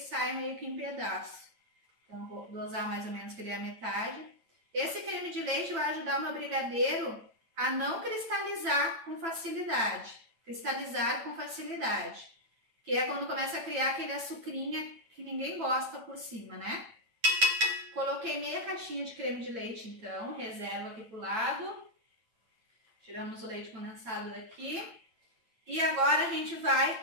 meio que em pedaço. Então vou dosar mais ou menos que ele é a metade. Esse creme de leite vai ajudar o meu brigadeiro a não cristalizar com facilidade. Cristalizar com facilidade, que é quando começa a criar aquele açucrinha que ninguém gosta por cima, né? Coloquei meia caixinha de creme de leite, então, reservo aqui pro lado. Tiramos o leite condensado daqui. E agora a gente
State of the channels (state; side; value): late; left; 9.0 ms